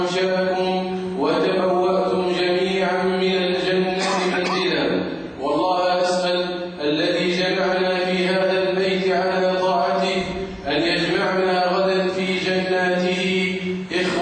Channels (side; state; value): both; identical; correlation 1.00